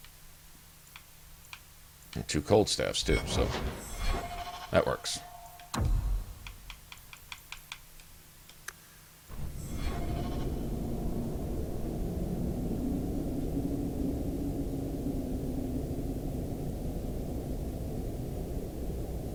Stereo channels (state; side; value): identical; both; correlation 1.00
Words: And 2 cold staffs too, so that works.